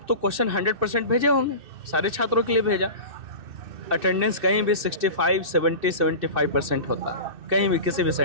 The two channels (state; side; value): late; left; 2.6 ms